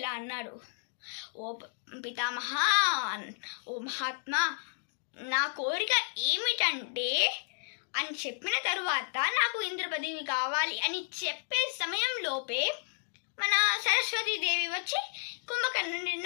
అన్నాడు, ఓ పితామహ, ఓ మహాత్మా, నా కోరిక ఏమిటంటే అని చెప్పిన తరువాత నాకు ఇంద్ర పదవి కావాలి అని చెప్పే సమయంలోపే మన సరస్వతీదేవి వచ్చి కుంభకర్ణుడి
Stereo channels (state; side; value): silent; right; digital silence